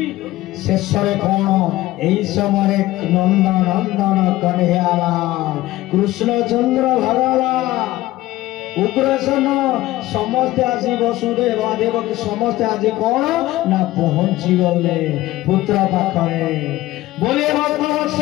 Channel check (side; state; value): right; quieter; 16.9 dB